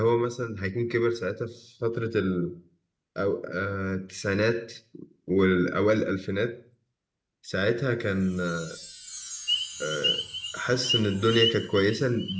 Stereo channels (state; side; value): identical; both; correlation 1.00